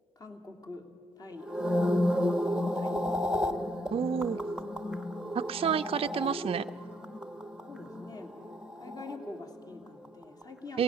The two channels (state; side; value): normal; both; correlation 0.71